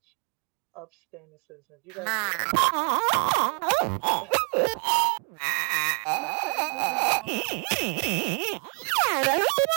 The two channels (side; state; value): left; quieter; 38.2 dB